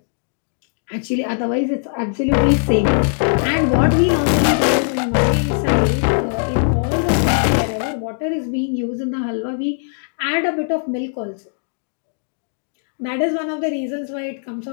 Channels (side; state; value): right; silent; digital silence